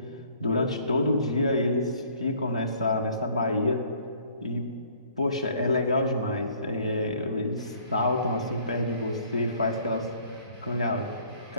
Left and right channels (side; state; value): both; inverted; correlation -0.58